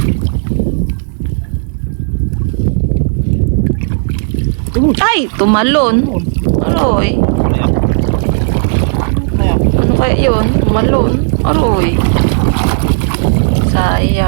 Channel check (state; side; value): silent; left; digital silence